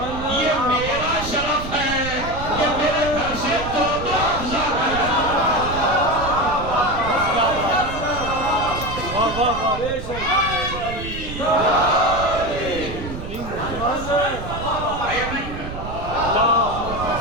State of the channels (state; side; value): noise; right; rumble, 9 dB below the sound